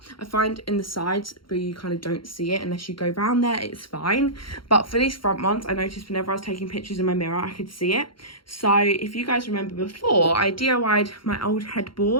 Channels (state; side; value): late; right; 0.73 ms